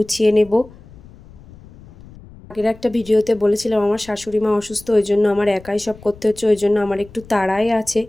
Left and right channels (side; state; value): left; noise; rumble, 21 dB below the sound